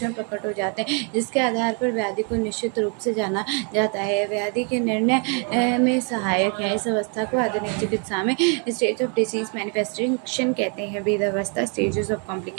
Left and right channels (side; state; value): left; quieter; 38.3 dB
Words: प्रकट हो जाते हैं जिसके आधार पर व्याधि को निश्चित रूप से जाना जाता है। व्याधि के निर्णय में सहायक है। इस अवस्था को आधुनिक चिकित्सा में स्टेज ऑफ डिसीज मैनिफेस्टेशन कहते हैं। वेद अवस्था स्टेजेस ऑफ